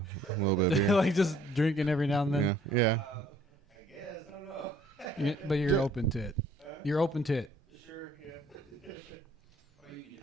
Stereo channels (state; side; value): normal; both; correlation 0.59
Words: of beer. Like just drinking every now and then. Yeah. I guess, I don't know. But you're open to it. You're open to it. Sure, yeah. Or you can